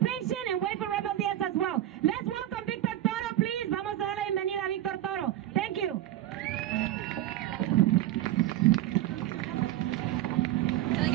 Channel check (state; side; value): quieter; left; 13.5 dB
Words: and wait for Rebel Diaz as well. Let's welcome Víctor Toro, please. Vamos a dar la bienvenida a Víctor Toro. Thank you.